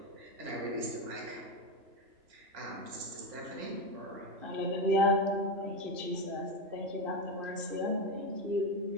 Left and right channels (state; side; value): late; left; 2.6 ms